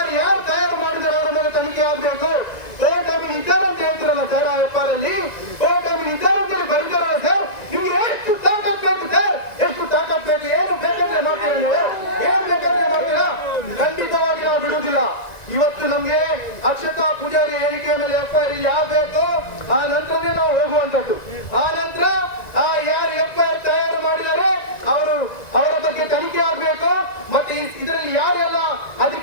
ಯಾರು ತಯಾರು ಮಾಡಿದರೆ ಅವರ ಮೇಲೆ ತನಿಖೆ ಆಗ್ಬೇಕು. ಕೋರ್ಟ್ ಅಮೀನ್ ಇದ್ದಾರೆ ಅಂತ ಹೇಳ್ತಿರಲ್ಲ ಸರ್. ಆ FIR ಅಲ್ಲಿ ಕೋರ್ಟ್ ಅಮೀನ್ ಇದ್ದಾರೆ ಅಂತ ಹೇಳಿ ಬರೀತಾರಲ್ಲ ಸರ್. ನಿಮ್ಗೆ ಎಷ್ಟು ತಾಕತ್ ಬೇಕು ಸರ್? ಎಷ್ಟು ತಾಕತ್ ಬೇಕು? ಏನು ಬೇಕಂದ್ರೆ ಮಾಡ್ತೀರಾ ನೀವು? ಏನ್ ಬೇಕಂದ್ರೆ ಮಾಡ್ತೀರಾ? ಖಂಡಿತವಾಗಿ ನಾವು ಬಿಡುವುದಿಲ್ಲ. ಇವತ್ತು ನಮ್ಗೆ ಅಕ್ಷತಾ ಪೂಜಾರಿ ಹೇಳಿಕೆಯ ಮೇಲೆ FIR ಆಗಬೇಕು. ಆ ನಂತರನೇ ನಾವು ಹೋಗುವಂತದ್ದು. ಆ ನಂತರ ಯಾರು FIR ತಯಾರು ಮಾಡಿದರೆ ಅವರ ಬಗ್ಗೆ ತನಿಖೆ ಆಗಬೇಕು. ಮತ್ತೆ ಇದರಲ್ಲಿ ಯಾರೆಲ್ಲ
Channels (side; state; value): right; late; 1.9 ms